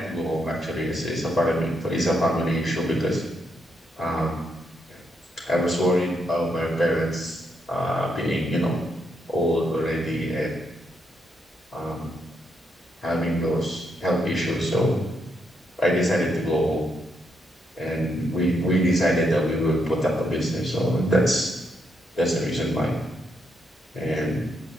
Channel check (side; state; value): both; normal; correlation 0.78